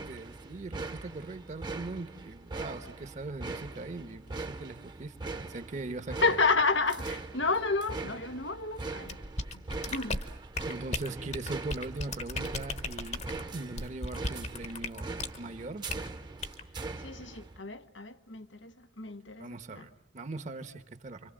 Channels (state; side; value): normal; both; correlation 0.09